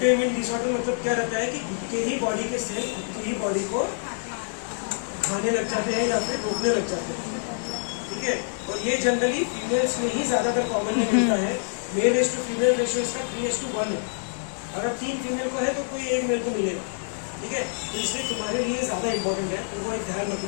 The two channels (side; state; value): right; silent; digital silence